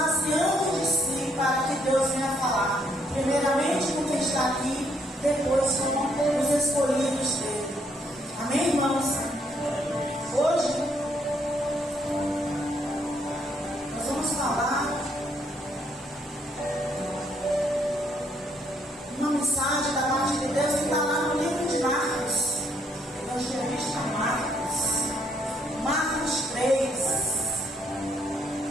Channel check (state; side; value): normal; both; correlation 0.71